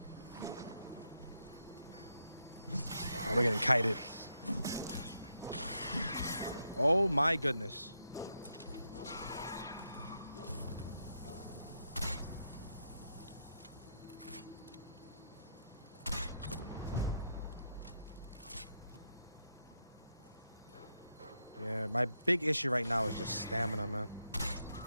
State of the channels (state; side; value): inverted; both; correlation -0.81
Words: Oh, we're getting kited. Oh my goodness. Yeah, my big issue right now is just stamina, man.